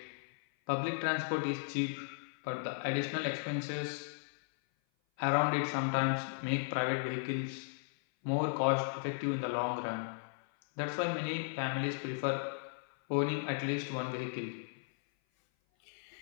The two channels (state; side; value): silent; right; 54 dB below the other